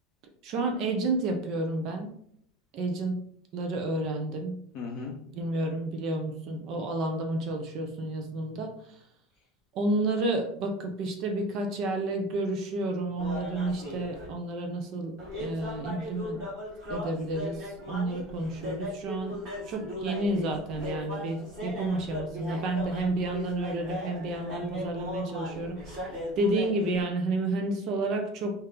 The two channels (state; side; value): normal; both; correlation 0.39